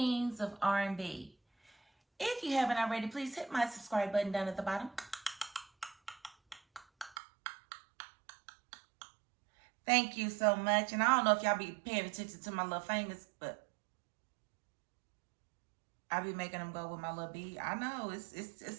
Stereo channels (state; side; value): drops out; left; at 7.2 s